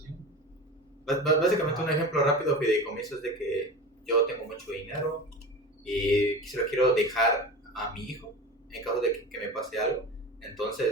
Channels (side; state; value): both; normal; correlation 0.31